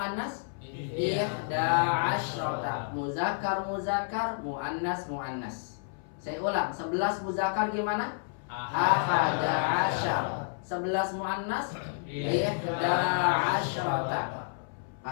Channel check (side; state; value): right; silent; 58 dB below the other